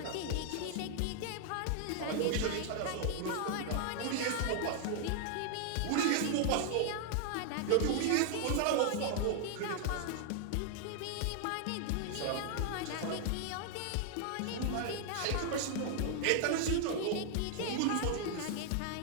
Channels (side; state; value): both; different; correlation 0.00